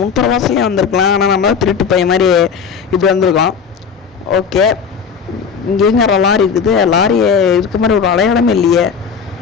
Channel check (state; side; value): quieter; right; 6.3 dB